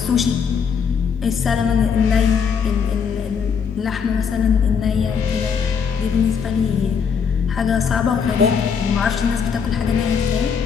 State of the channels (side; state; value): right; quieter; 6.6 dB